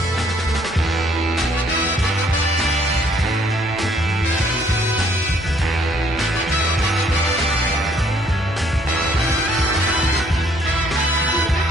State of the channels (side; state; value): both; normal; correlation 0.64